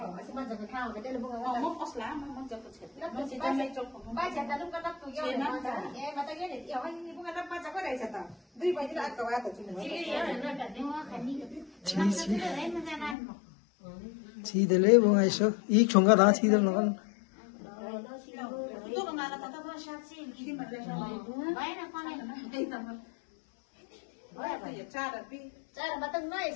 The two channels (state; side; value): drops out; right; at 13.2 s